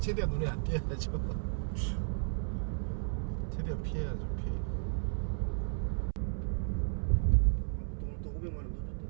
눈에 안 띄어야죠. 최대한 피해야죠. 피해. 오늘 또 500만 원 더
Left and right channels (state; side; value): silent; left; 55 dB below the other